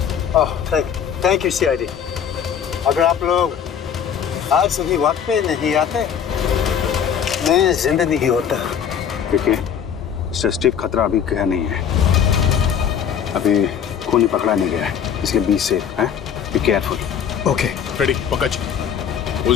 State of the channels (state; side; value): quieter; right; 8.2 dB